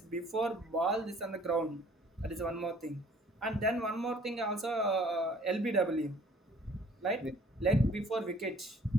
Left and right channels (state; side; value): normal; both; correlation 0.56